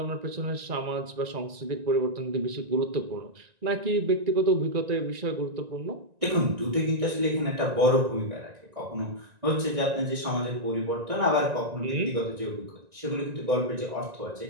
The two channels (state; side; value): late; left; 1.9 ms